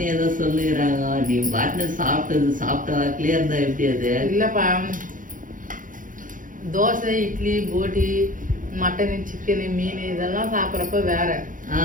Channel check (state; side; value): late; left; 0.39 ms